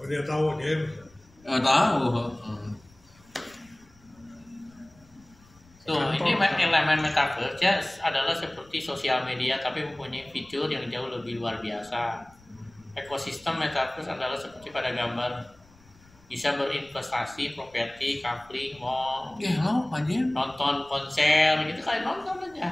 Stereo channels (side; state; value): left; noise; rumble, 28 dB below the sound